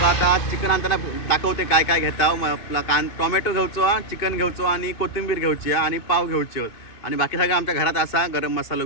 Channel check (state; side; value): late; right; 2.6 ms